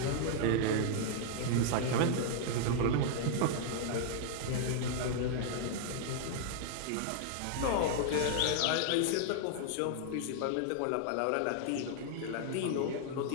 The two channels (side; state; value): both; different; correlation -0.01